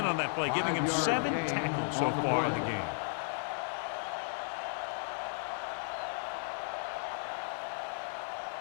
on that play, giving him 7 tackles so far in the game.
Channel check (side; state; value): right; silent; digital silence